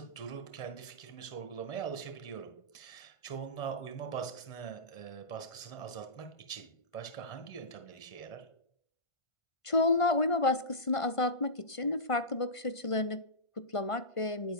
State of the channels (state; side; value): late; right; 1.5 ms